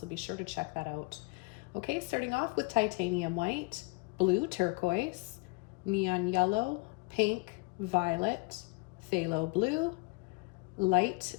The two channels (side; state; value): right; quieter; 29.1 dB